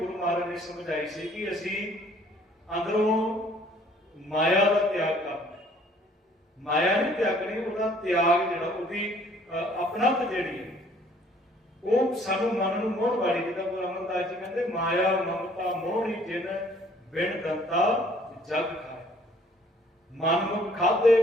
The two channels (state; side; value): normal; both; correlation 0.59